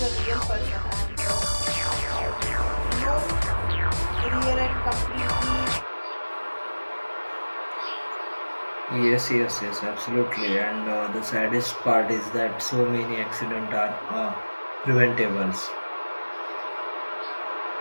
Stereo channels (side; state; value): both; inverted; correlation -1.00